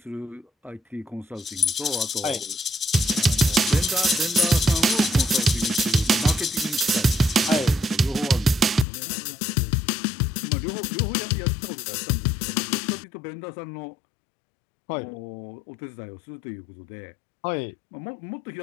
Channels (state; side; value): drops out; right; at 8.8 s